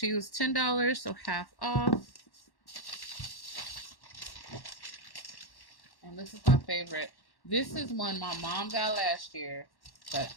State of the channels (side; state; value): right; late; 1.1 ms